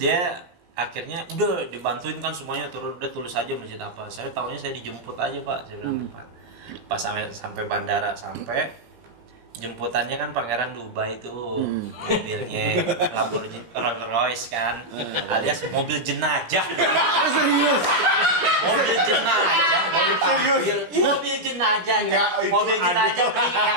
akhirnya udah dibantuin kan semuanya, turun udah tulis aja masjid apa. Saya tahunya saya dijemput aja Pak, saya bilang Pak. Pas sampai bandara jemputannya kan Pangeran Dubai tuh, mobilnya Lamborghini Rolls Royce kan, alias mobil jenajah. Serius? Mobil jenajah, mobil jenajah, mobil jenajah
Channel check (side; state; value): left; late; 17 ms